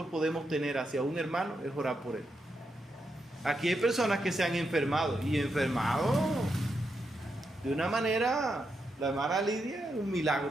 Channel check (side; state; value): both; normal; correlation 0.84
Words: podemos tener hacia un hermano es orar por él. Aquí hay personas que se han enfermado y enfermado de una manera, la hermana Lidia, un